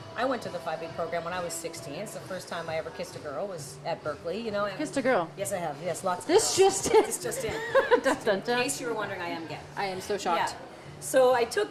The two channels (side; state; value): both; identical; correlation 1.00